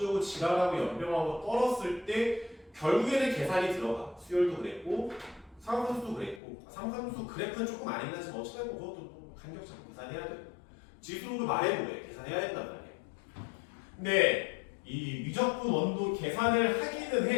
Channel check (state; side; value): drops out; right; at 6.4 s